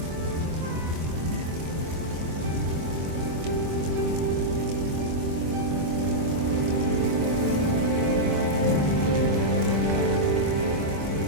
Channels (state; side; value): late; left; 24 ms